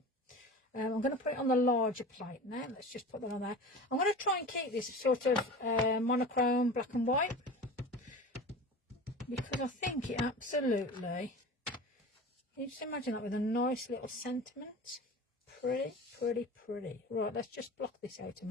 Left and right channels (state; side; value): normal; both; correlation 0.35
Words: I'm going to put it on the larger plate now. Let's just put that on there. I'm going to try and keep this sort of monochrome black and white, because I think it absolutely... Can you just imagine that with a nice little sentiment? Pretty, pretty, pretty. Right, let's just block this out a